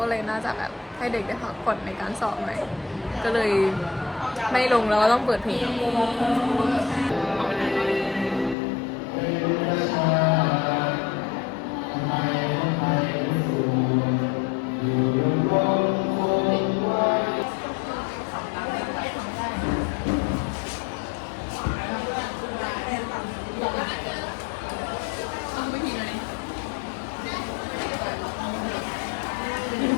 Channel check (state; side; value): drops out; right; at 8.6 s